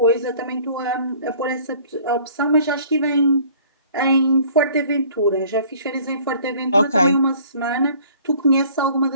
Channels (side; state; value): both; inverted; correlation -0.53